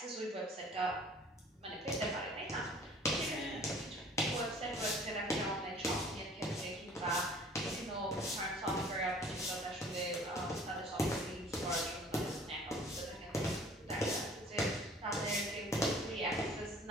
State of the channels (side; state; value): both; normal; correlation 0.51